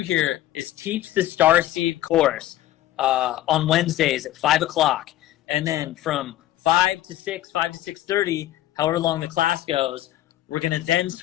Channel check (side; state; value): right; quieter; 14.2 dB